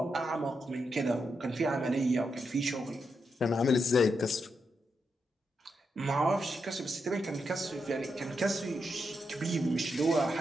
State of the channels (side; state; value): both; normal; correlation 0.84